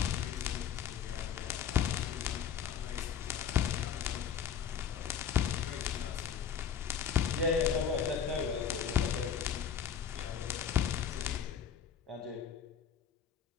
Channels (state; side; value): quieter; right; 8.0 dB